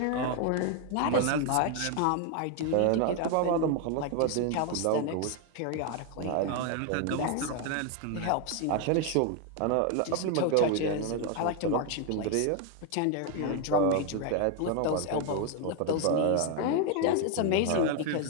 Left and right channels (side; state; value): both; different; correlation 0.01